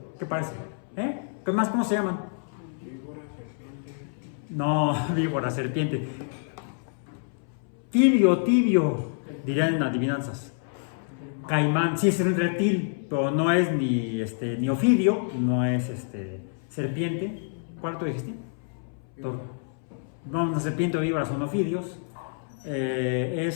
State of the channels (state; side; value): silent; right; 60 dB below the other